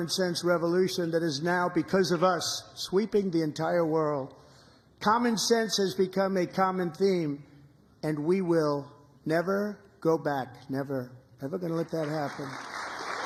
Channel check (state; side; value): identical; both; correlation 1.00